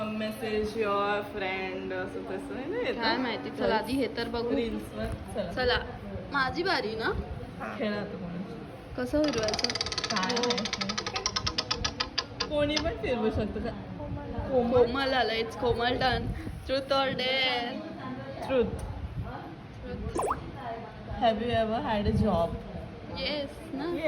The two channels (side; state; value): both; identical; correlation 1.00